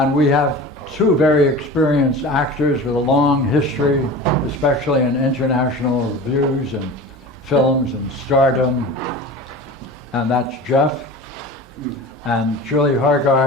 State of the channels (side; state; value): both; normal; correlation 0.35